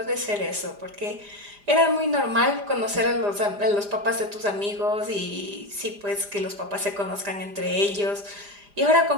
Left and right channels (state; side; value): late; left; 4.9 ms